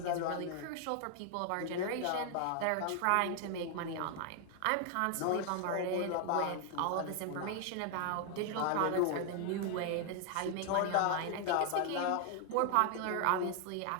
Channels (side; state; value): both; different; correlation 0.00